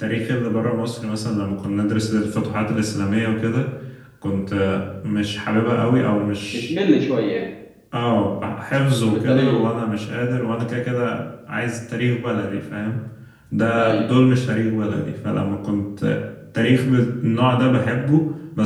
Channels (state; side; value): identical; both; correlation 1.00